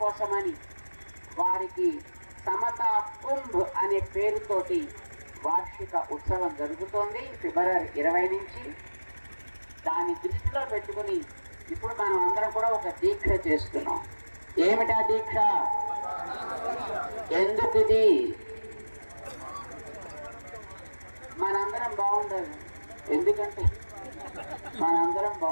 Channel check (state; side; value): inverted; both; correlation -1.00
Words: కోసమని వారికి సమతా కుంభ్ అనే పేరుతోటి వార్షిక ఉత్సవం జరుగుతోంది ఫిబ్రవరి 20 నుంచి. దాన్ని దృష్టిలో పెట్టుకుని ఇప్పుడు మనం అందరం కూడా ఒక దీక్ష చేస్తున్నాం. ఏమిటా దీక్ష? ఎందుకు ఇది? మనందరం బాగుండాలి. ఎందుకంటే మనందరం